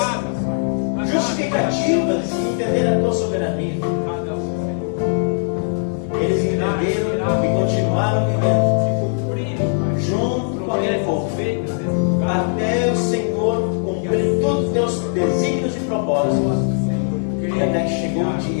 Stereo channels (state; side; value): silent; right; 66 dB below the other